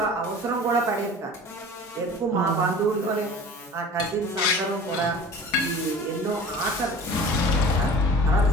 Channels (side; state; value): both; normal; correlation 0.41